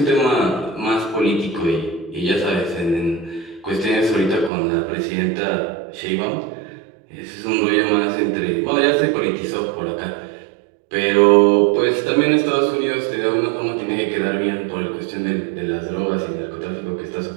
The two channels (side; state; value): left; drops out; at 4.5 s